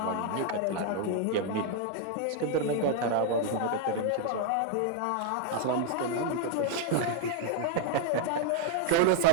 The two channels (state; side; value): different; both; correlation 0.00